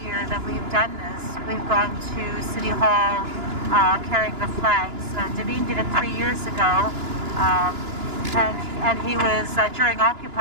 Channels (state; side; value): late; left; 2.9 ms